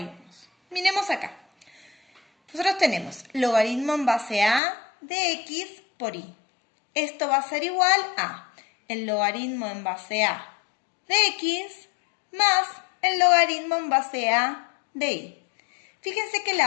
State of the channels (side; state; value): right; drops out; at 4.6 s